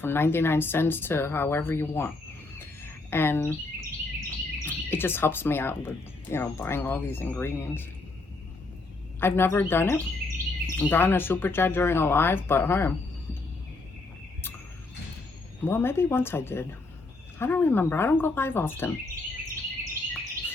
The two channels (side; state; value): right; quieter; 3.4 dB